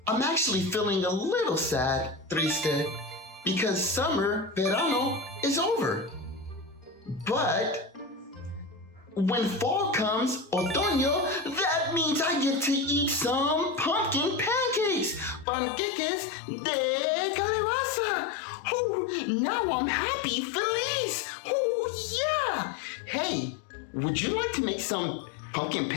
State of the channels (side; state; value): right; drops out; at 15.5 s